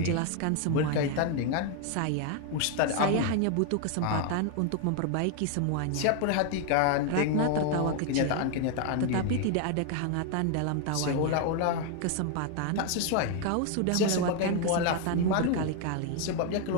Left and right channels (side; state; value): both; different; correlation 0.00